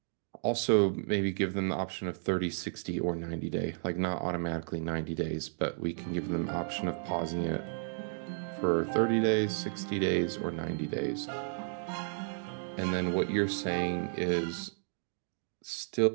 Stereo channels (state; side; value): silent; left; digital silence